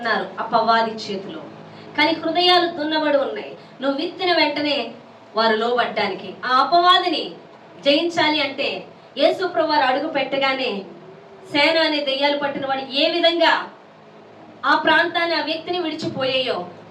అపవాది చేతిలో. కానీ హృదయాలు దున్నబడి ఉన్నాయి. నువ్వు విత్తిన వెంటనే వారు లోబడ్డానికి. ఆ అపవాదిని జయించాలి అంటే యేసు ప్రభువు వారు అడుగు పెట్టగానే సేన అనే దెయ్యాలు పట్టిన వాడు ఏ విధంగా ఆ ప్రాంతాన్ని ఆ వ్యక్తిని విడిచిపోయాయో,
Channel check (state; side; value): identical; both; correlation 1.00